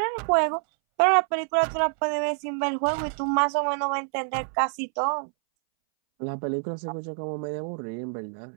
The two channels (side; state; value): left; silent; 61 dB below the other